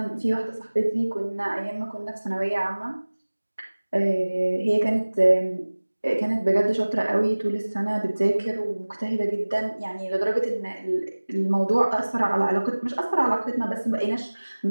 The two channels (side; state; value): both; inverted; correlation -1.00